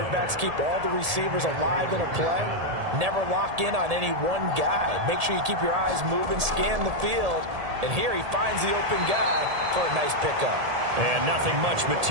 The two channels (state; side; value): late; left; 1.7 ms